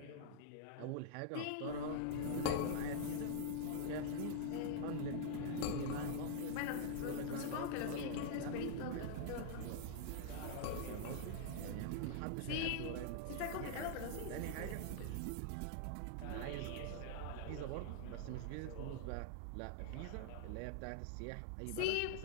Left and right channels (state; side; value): different; both; correlation -0.01